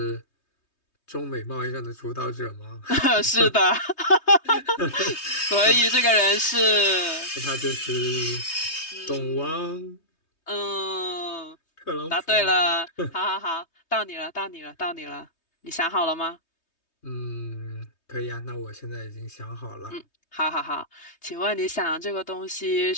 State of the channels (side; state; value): right; late; 3.2 ms